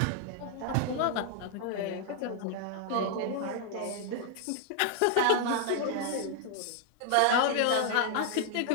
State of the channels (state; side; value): different; both; correlation 0.00